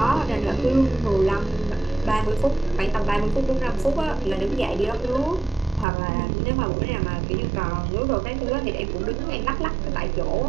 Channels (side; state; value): left; drops out; at 5.9 s